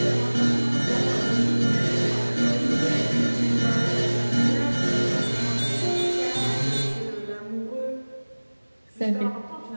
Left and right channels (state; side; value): inverted; both; correlation -1.00